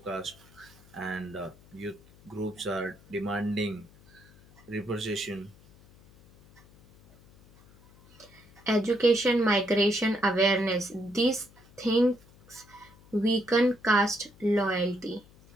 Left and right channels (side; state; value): left; noise; hum, 26 dB below the sound